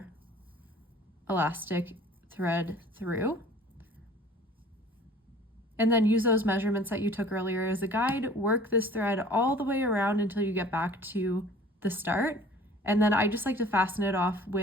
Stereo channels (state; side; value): normal; both; correlation 0.49